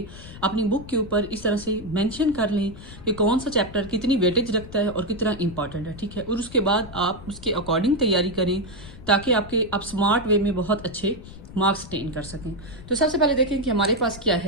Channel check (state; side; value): noise; left; rumble, 16 dB below the sound